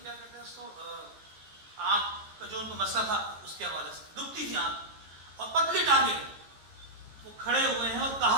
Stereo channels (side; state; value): left; late; 15 ms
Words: کیا کہتے ہیں اس کو, آنکھ کا جو ان کو مسئلہ تھا اس کے حوالے سے دکھتی تھی آنکھ, اور پتلی ٹانگیں. وہ کھڑے ہوئے ہیں اور